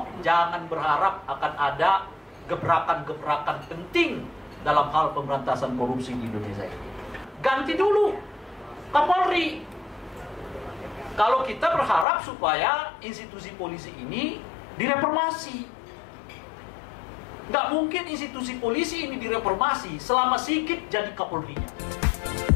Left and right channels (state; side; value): drops out; right; at 12.1 s